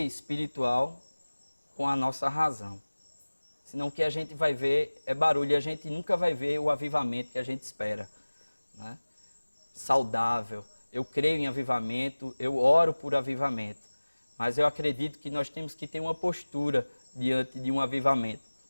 espiritual com a nossa razão. Senão o que a gente vai ver é barulho e a gente nunca vai ver o avivamento que a gente espera, né? Saudável. Eu creio em avivamento, eu oro por avivamento, mas eu acredito que nós temos que ter uma postura diante de um avivamento.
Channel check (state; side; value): inverted; both; correlation -1.00